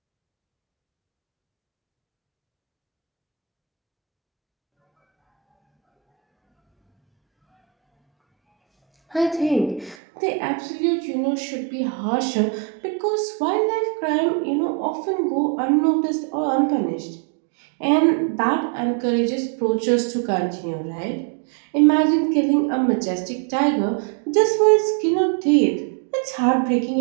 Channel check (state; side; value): drops out; left; at 10.0 s